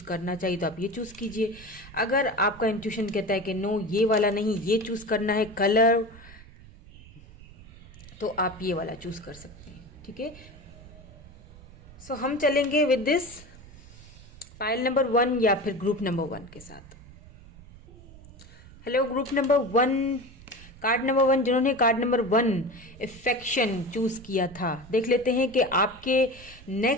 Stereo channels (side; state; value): right; noise; rumble, 20 dB below the sound